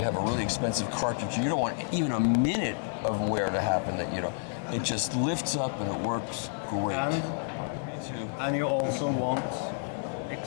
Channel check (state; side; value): silent; right; digital silence